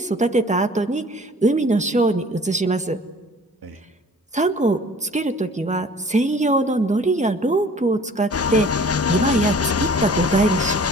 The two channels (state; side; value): normal; both; correlation 0.49